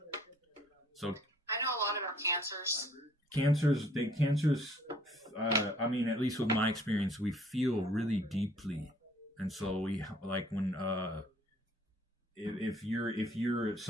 So I know a lot about cancers. I mean, at least with my experience, we feel really deeply. And so we like when if you're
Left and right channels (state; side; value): normal; both; correlation 0.59